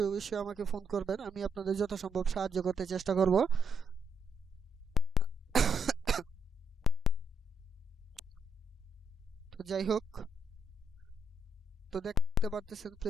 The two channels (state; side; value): normal; both; correlation 0.75